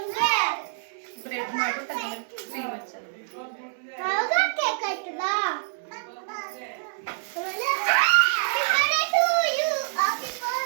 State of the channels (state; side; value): silent; left; digital silence